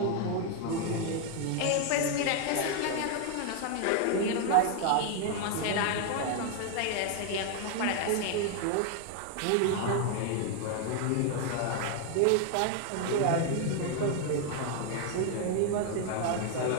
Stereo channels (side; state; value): both; different; correlation 0.00